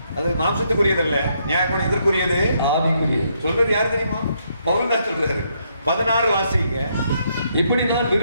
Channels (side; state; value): both; inverted; correlation -0.75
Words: அது மாம்சத்துக்குரியதல்ல, நியாயப்பிரமாணம் இதற்குரியது, ஆவிக்குரிய. சொல்றது யாரு தெரியுமா? பவுல் தான் சொல்றாரு. 16 வாசிங்க. இப்படி நான்